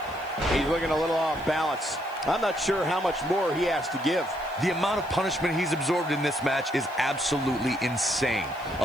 He's looking a little off balance. I'm not sure how much more he has to give. The amount of punishment he's absorbed in this match is absolutely insane.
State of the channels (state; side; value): noise; right; hiss, 25 dB below the sound